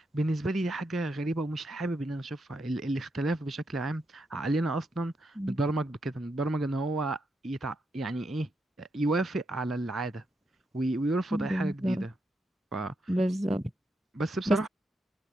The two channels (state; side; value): normal; both; correlation 0.82